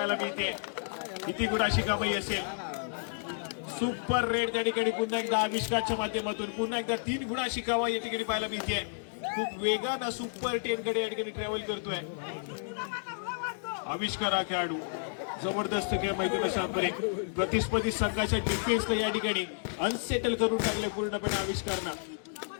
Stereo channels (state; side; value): silent; right; digital silence